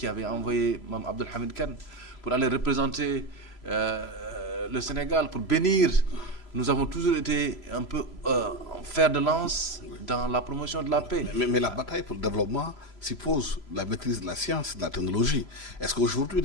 avait envoyé Mme Abdelhamid Khan pour aller représenter le Sénégal, pour bénir. Nous avons toujours été un peu fer de lance dans la promotion de la paix. Mais la bataille pour le développement suppose la maîtrise de la science et de la technologie. Est-ce qu'aujourd'hui,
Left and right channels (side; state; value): right; late; 3.0 ms